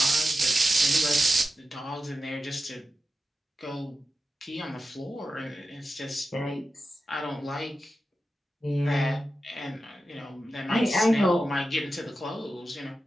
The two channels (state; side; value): normal; both; correlation 0.92